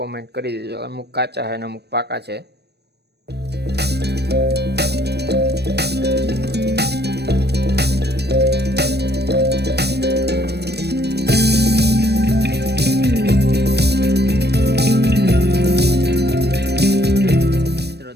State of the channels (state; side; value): late; left; 0.48 ms